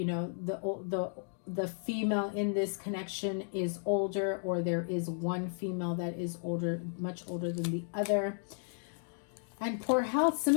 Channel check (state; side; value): silent; right; digital silence